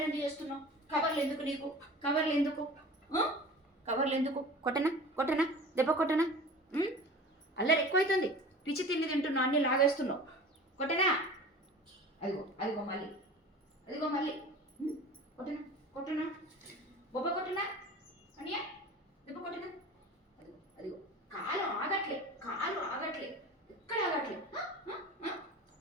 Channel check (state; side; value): normal; both; correlation 0.39